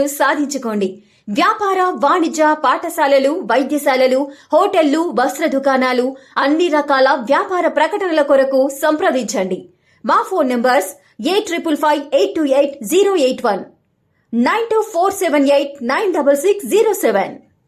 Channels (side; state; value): both; identical; correlation 1.00